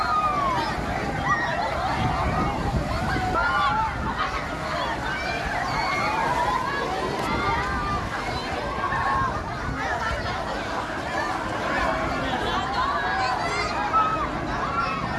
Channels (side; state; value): both; identical; correlation 1.00